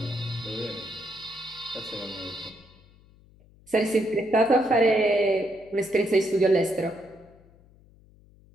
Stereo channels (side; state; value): left; noise; hum, 27 dB below the sound